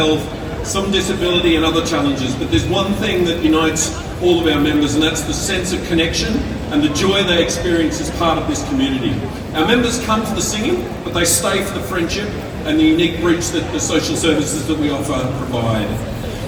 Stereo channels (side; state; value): both; identical; correlation 1.00